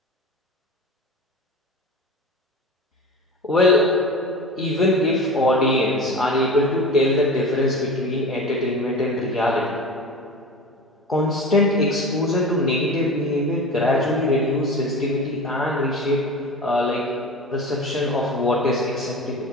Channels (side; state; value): both; normal; correlation 0.32